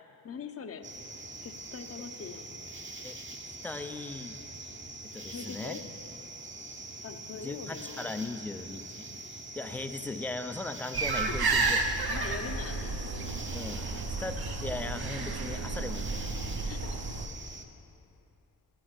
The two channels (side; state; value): both; normal; correlation 0.36